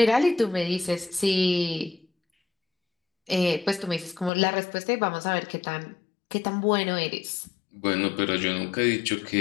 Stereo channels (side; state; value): right; drops out; at 4.3 s